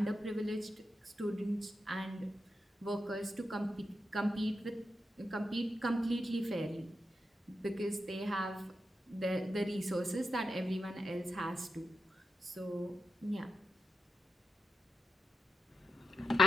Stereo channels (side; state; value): both; normal; correlation 0.88